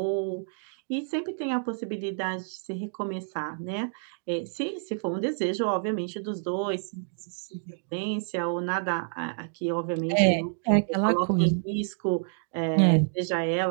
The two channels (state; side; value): silent; left; digital silence